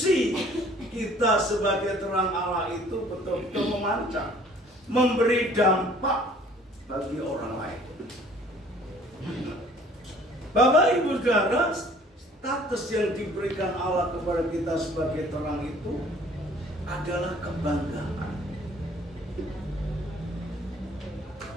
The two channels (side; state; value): both; normal; correlation 0.54